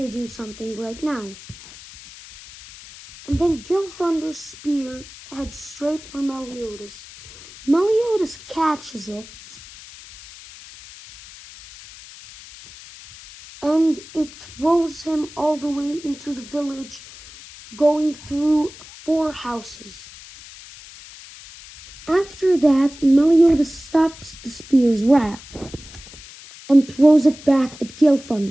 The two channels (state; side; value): noise; left; hiss, 18 dB below the sound